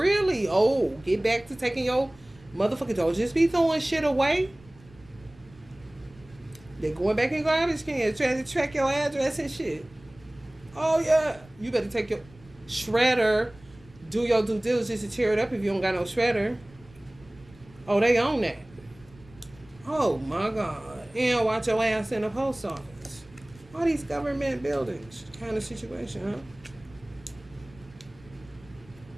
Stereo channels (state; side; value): noise; right; rumble, 24 dB below the sound